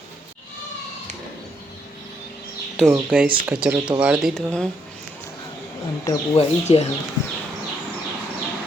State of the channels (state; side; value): normal; both; correlation 0.74